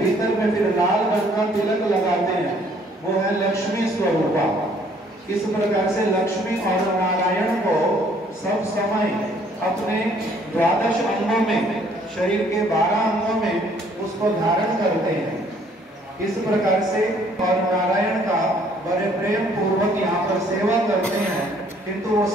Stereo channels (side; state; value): both; normal; correlation 0.62